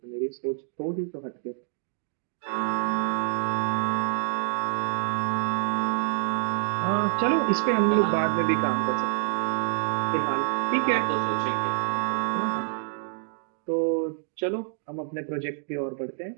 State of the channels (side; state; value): left; silent; digital silence